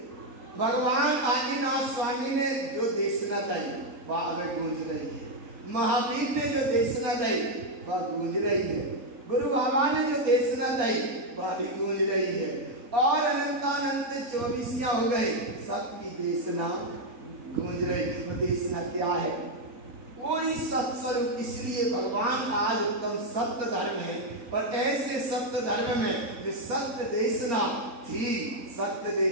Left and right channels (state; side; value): late; left; 4.3 ms